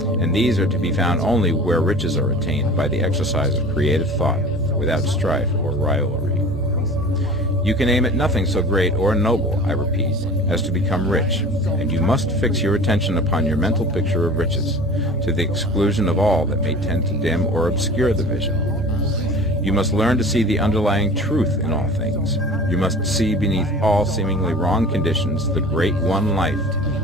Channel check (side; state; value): both; normal; correlation 0.41